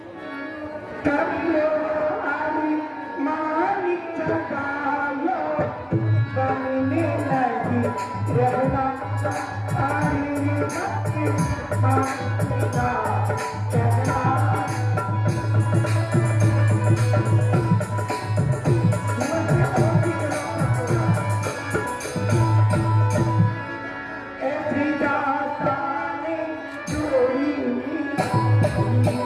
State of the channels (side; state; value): both; identical; correlation 1.00